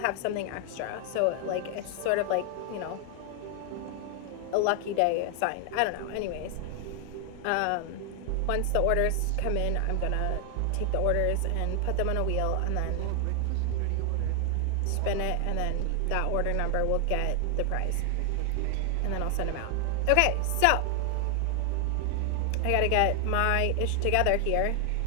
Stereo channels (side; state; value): both; different; correlation 0.00